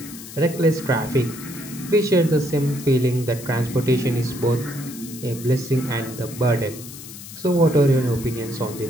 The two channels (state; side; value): noise; left; hiss, 14 dB below the sound